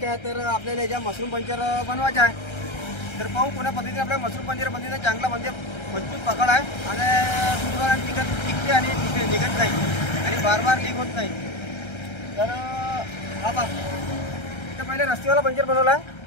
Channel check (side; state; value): right; late; 1.3 ms